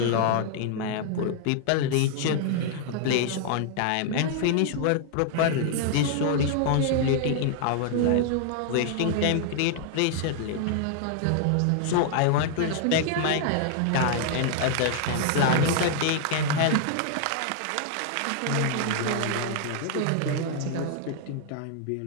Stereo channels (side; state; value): both; different; correlation 0.00